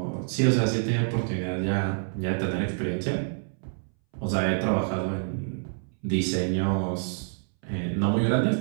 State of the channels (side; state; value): left; silent; 60 dB below the other